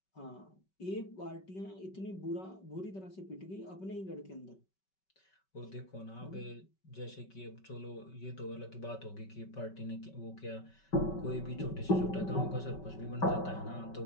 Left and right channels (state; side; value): late; right; 5.3 ms